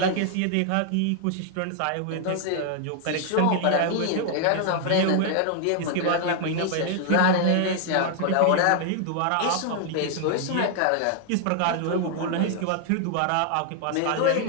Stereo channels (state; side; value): different; both; correlation 0.00